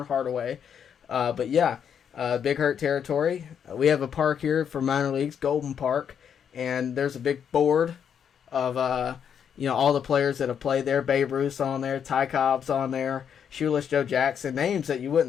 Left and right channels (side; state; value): right; quieter; 8.0 dB